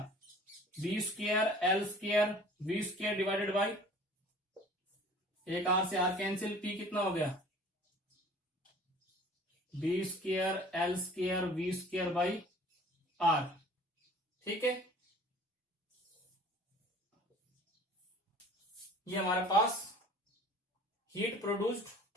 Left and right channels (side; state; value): both; normal; correlation 0.48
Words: B square L square we square divided by, एक आर से आर कैंसिल, पी कितना हो गया, B square L square we square by R. ठीक है, ये हमारे पास हीट प्रोड्यूस्ड